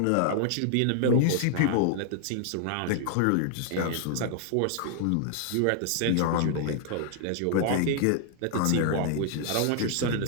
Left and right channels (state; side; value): different; both; correlation 0.00